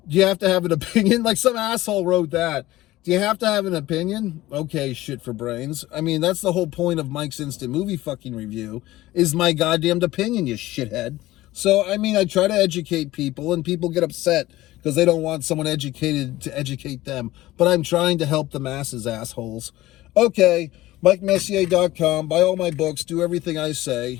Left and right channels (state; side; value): quieter; right; 16.9 dB